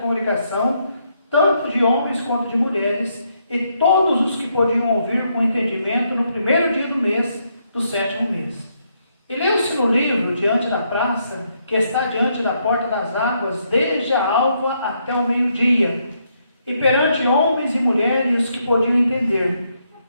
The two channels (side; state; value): both; inverted; correlation -0.76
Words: tanto de homens quanto de mulheres, e todos os que podiam ouvir com entendimento no primeiro dia do mês, do 7º mês. E leu-se no livro, diante da praça, que está diante da porta das águas, desde a alva até o meio-dia, e perante homens e mulheres que podiam entender.